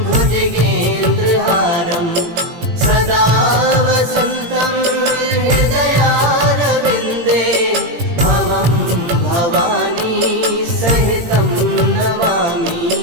भुजगेन्द्रहारं सदा वसन्तं हृदयारविन्दे भवं भवानी सहितं नमामि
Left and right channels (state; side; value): late; left; 18 ms